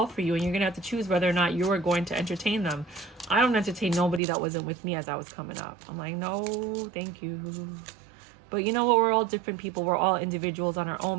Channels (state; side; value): drops out; left; at 4.2 s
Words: for you, and you're going to have to choose whether or not you are going to entertain them. I don't entertain nobody that wasn't with me as I was coming up. I'm like, no, thank you. But you know what? We're all different people. We're all individuals on our